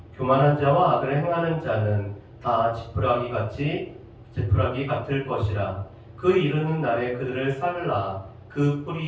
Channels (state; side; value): identical; both; correlation 1.00